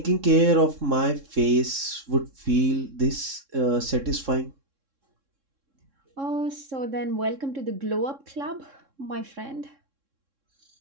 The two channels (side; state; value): left; late; 3.6 ms